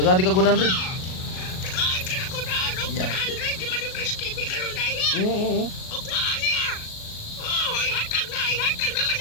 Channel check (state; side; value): late; right; 38 ms